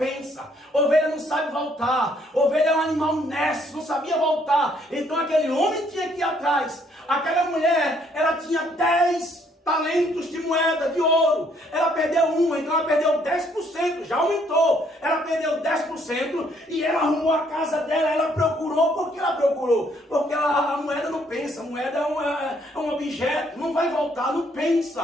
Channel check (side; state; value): both; normal; correlation 0.67